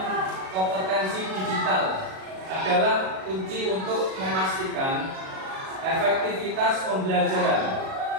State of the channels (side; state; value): left; late; 37 ms